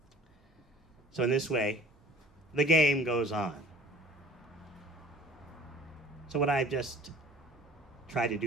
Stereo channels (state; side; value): normal; both; correlation 0.49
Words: So in this way, the game goes on. So what I've just tried to